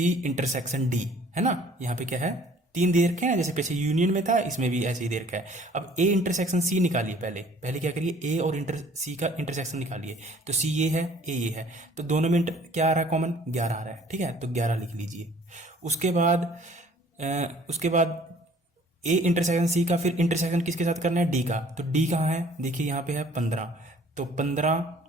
intersection D, है ना। यहाँ पे क्या है, 3 दे रखे हैं, जैसे पीछे यूनियन में था, इसमें भी ऐसे ही दे रखा है। अब ए इंटरसेक्शन सी निकालिए, पहले क्या करिए, ए और सी का इंटरसेक्शन निकालिए। तो सी ये है, ए ये है, तो दोनों में क्या आ रहा है कॉमन, 11 आ रहा है, ठीक है, तो 11 लिख लीजिए। उसके बाद ए इंटरसेक्शन सी का फिर इंटरसेक्शन किसके साथ करना है, डी का। तो डी कहाँ है, देखिए यहाँ पे है 15, तो 15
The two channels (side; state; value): both; normal; correlation 0.54